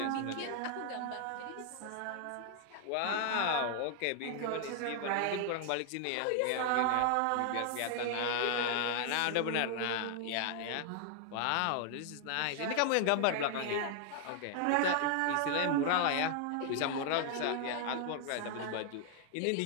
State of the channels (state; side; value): different; both; correlation 0.00